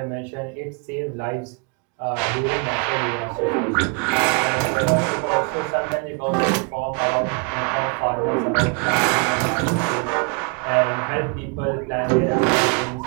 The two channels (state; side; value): quieter; left; 34.2 dB